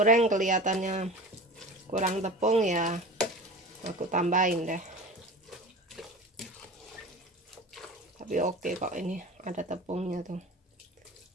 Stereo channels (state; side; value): normal; both; correlation 0.35